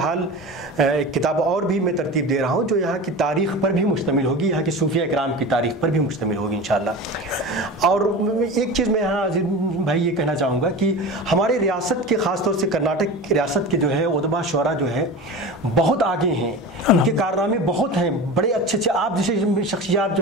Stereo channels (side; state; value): both; normal; correlation 0.30